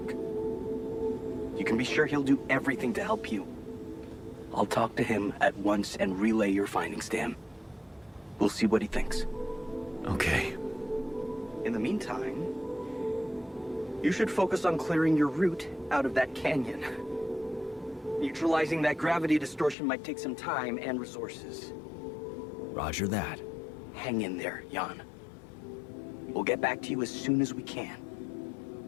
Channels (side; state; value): right; drops out; at 19.8 s